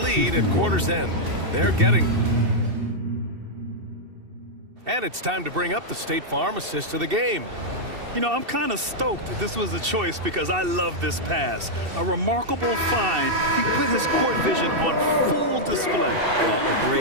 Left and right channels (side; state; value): left; late; 2.7 ms